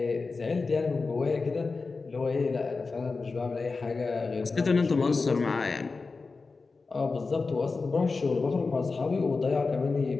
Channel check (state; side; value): quieter; right; 4.1 dB